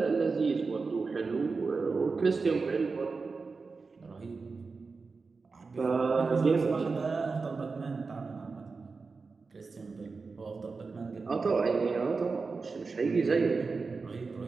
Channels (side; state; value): left; quieter; 4.4 dB